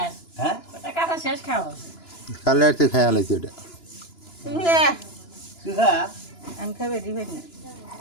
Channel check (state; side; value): late; right; 2.9 ms